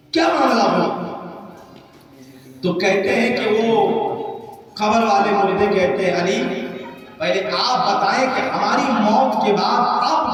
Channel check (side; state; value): both; identical; correlation 1.00